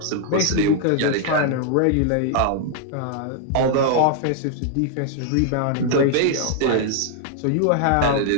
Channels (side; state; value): both; different; correlation 0.00